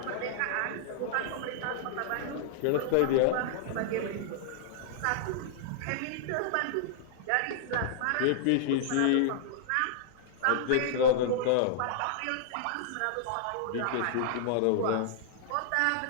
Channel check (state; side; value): different; both; correlation -0.01